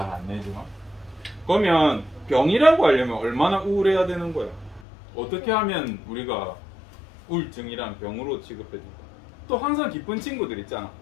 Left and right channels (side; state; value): right; drops out; at 4.9 s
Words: 안 내지만. 그러면 병이라고 하려면 얼마나 우울해야 되는 거야? 어떻게 하면 우리가 우울증이란 병으로 취급해줄까? 또 항상 기쁜 친구들 있잖아.